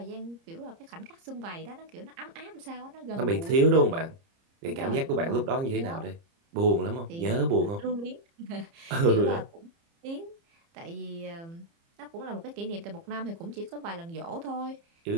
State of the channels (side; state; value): left; late; 30 ms